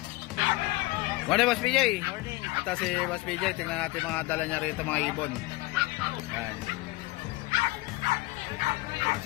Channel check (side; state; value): right; quieter; 20.9 dB